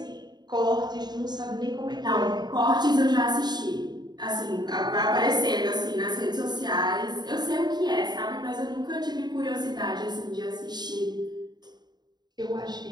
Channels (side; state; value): left; late; 0.20 ms